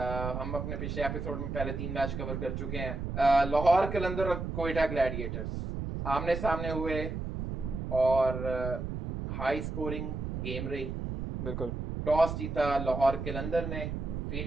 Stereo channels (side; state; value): right; noise; rumble, 4 dB below the sound